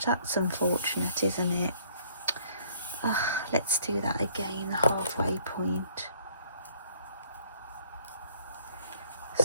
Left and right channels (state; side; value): inverted; both; correlation -0.61